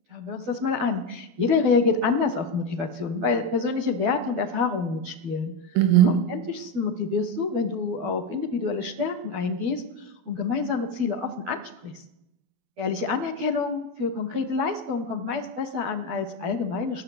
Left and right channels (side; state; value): left; late; 12 ms